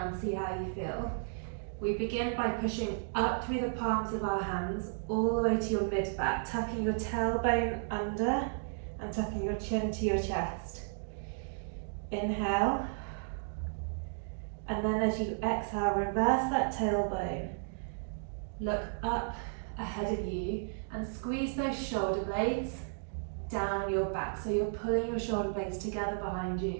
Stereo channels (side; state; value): left; silent; digital silence